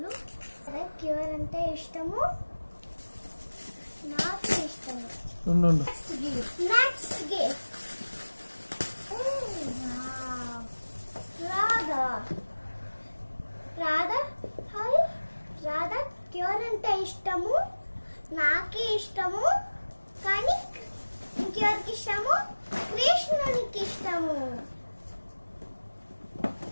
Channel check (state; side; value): inverted; both; correlation -1.00